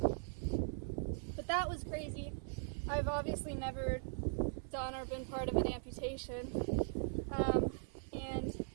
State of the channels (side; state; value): left; silent; 51 dB below the other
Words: But that was crazy. I've obviously never done or been part of an amputation. And